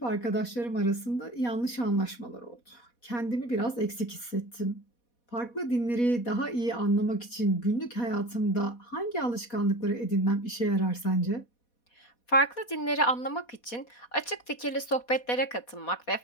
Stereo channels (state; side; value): late; right; 4.2 ms